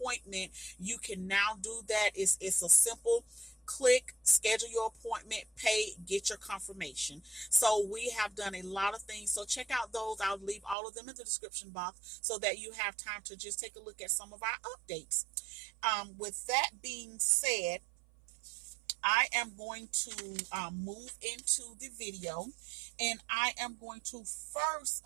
you can now do that. It's a simple click, schedule your appointment, pay, get your confirmation. So we have done a lot of things. So check out those. I'll leave all of them in the description box so that you have time to just take a look at some of our updates. With that being said, I am going to move into the video, and I am going to first,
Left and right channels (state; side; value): drops out; left; at 10.8 s